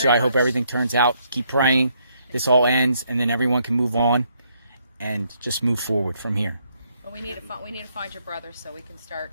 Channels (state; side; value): inverted; both; correlation -0.72